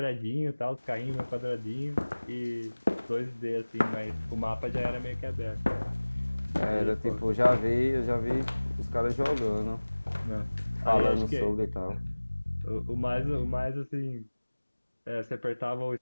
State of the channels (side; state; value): both; inverted; correlation -1.00